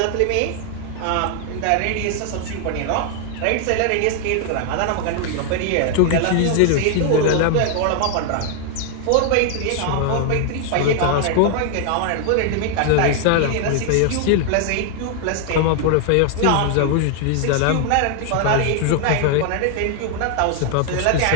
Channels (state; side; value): different; both; correlation 0.00